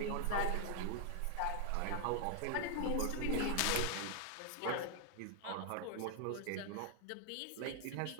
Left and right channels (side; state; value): both; different; correlation 0.00